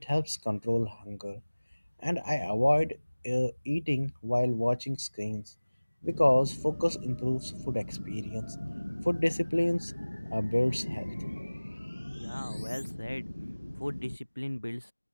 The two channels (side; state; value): both; inverted; correlation -1.00